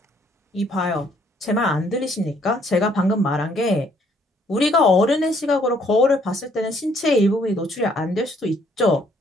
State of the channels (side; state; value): both; normal; correlation 0.65